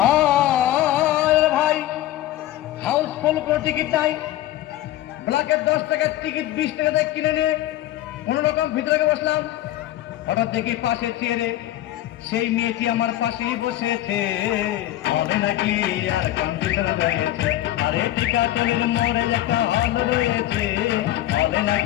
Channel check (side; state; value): right; quieter; 14.2 dB